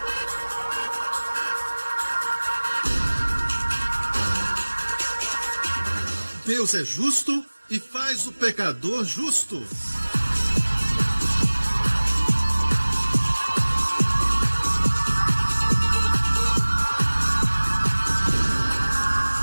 Deus é justo e faz o pecador justo.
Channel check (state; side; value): inverted; both; correlation -1.00